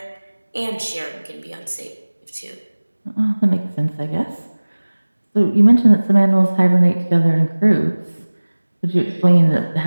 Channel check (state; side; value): inverted; both; correlation -1.00